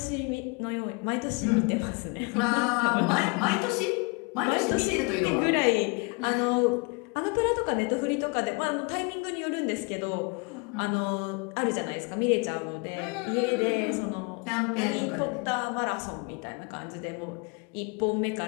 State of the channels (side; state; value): right; quieter; 31.3 dB